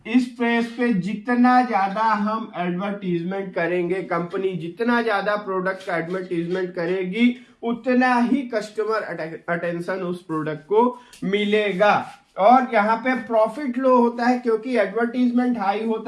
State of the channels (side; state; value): both; identical; correlation 1.00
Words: इस फेज पे जितना ज्यादा हम एडवर्टीजमेंट करेंगे, कंपनी जितना ज्यादा प्रोडक्ट का एडवर्टीजमेंट करेगी, उतना ही कस्टमर अटेंशन उस प्रोडक्ट को मिलेगा। और यहाँ पे प्रॉफिट लो होता है क्योंकि एडवर्टीजमेंट हाई